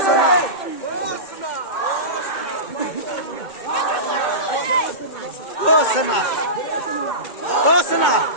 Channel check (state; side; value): late; right; 2.2 ms